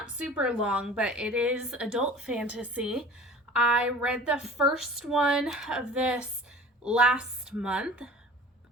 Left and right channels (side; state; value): both; normal; correlation 0.42